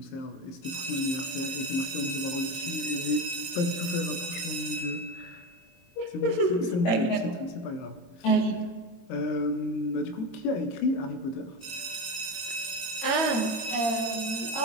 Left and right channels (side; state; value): right; late; 22 ms